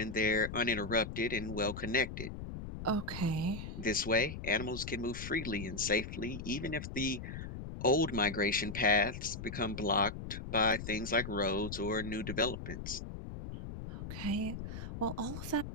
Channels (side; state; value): left; noise; rumble, 8 dB below the sound